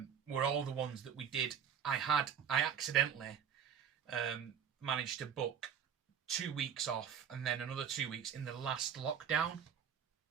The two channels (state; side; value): quieter; left; 8.0 dB